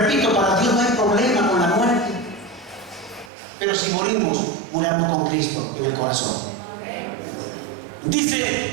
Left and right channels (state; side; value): drops out; left; at 3.3 s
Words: para Dios no hay problema con la muerte, pero si morimos, muramos con Cristo en el corazón.